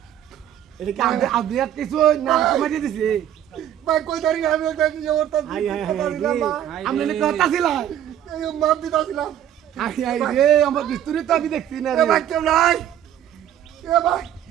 এটা কি আদিয়াত কিছু না কমাই দিছে ভাই কই দাঁড়ি আমি দেখি ওরটা আমি নে কথা ছিল এই মাপ দিতাছিলাম আই আই রে আমার বিস্তুরি তো আমি দেখছি না রে ভাই কেউ নাই এ ভাই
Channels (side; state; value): left; quieter; 10.9 dB